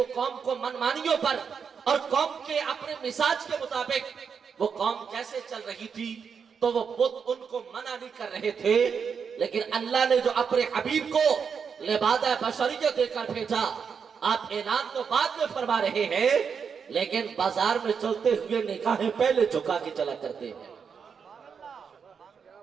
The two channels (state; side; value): quieter; left; 6.4 dB